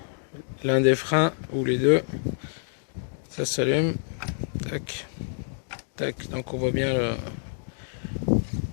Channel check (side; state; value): right; silent; digital silence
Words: l'un des freins ou les deux, ça s'allume, tac tac, donc on voit bien le